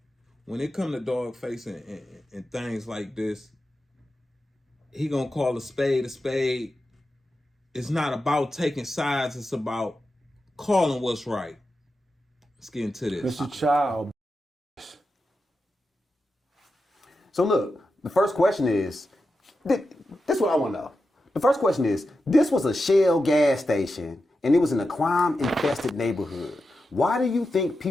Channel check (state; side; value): normal; both; correlation 0.90